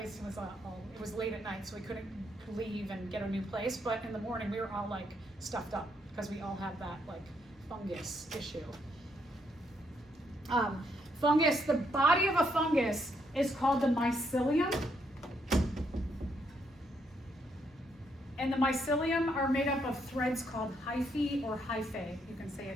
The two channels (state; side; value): normal; both; correlation 0.75